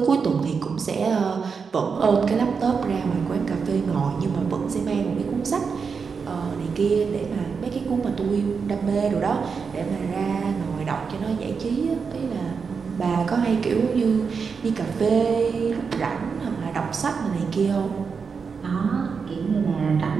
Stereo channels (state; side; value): quieter; left; 5.6 dB